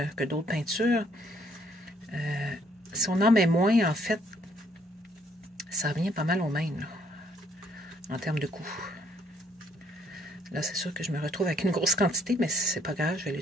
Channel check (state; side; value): normal; both; correlation 0.66